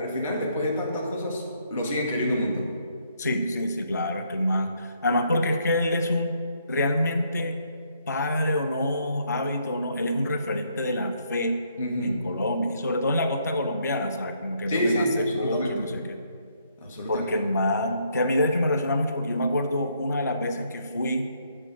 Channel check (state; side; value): inverted; both; correlation -0.71